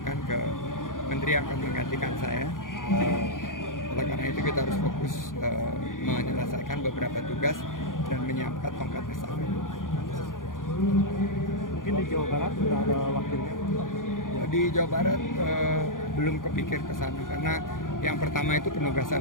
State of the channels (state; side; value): late; right; 0.89 ms